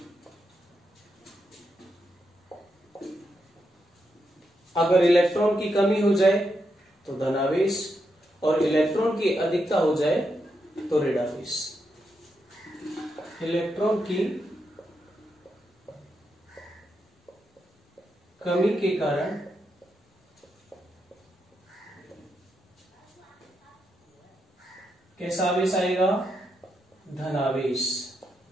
अगर इलेक्ट्रॉन की कमी हो जाए तो धनावेश, और इलेक्ट्रॉन की अधिकता हो जाए तो ऋणावेश। इलेक्ट्रॉन की कमी के कारण कैसा आवेश आएगा? धनावेश,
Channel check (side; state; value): both; normal; correlation 0.83